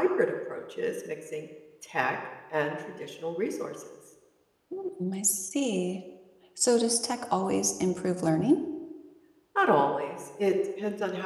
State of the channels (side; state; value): both; identical; correlation 1.00